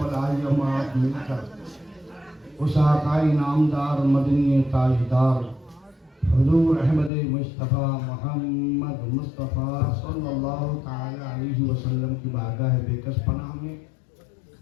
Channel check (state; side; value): drops out; right; at 7.1 s